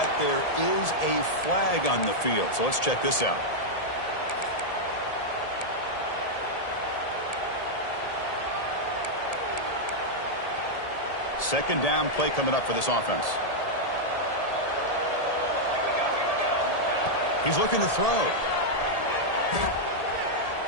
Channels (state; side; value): late; right; 1.8 ms